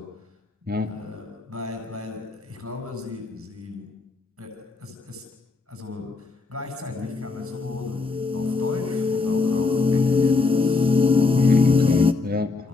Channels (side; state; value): right; quieter; 3.9 dB